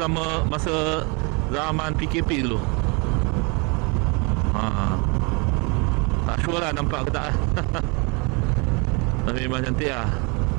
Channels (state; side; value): quieter; left; 31.2 dB